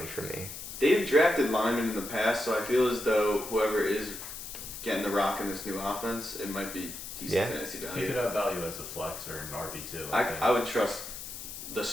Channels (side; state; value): left; noise; hiss, 9 dB below the sound